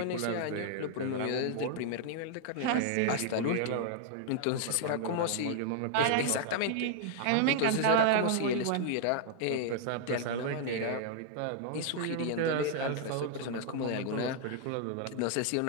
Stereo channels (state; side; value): different; both; correlation 0.00